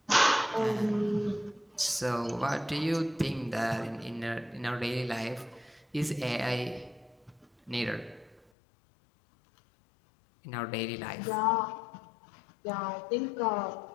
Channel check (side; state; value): right; drops out; at 8.4 s